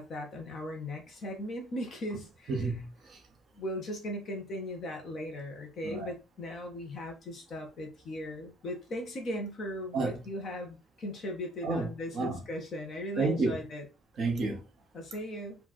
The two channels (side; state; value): both; normal; correlation 0.59